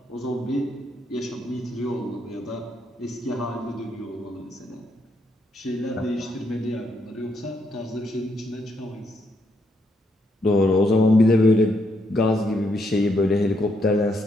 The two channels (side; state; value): both; normal; correlation 0.76